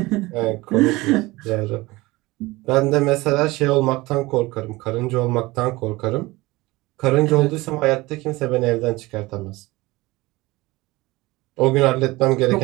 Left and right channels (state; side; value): quieter; left; 20.8 dB